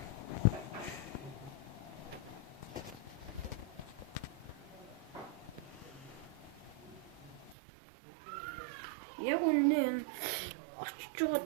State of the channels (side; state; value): left; drops out; at 7.6 s